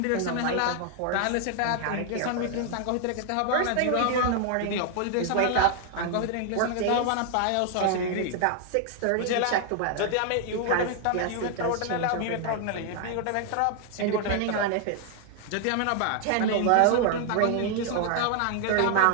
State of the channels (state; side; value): different; both; correlation 0.00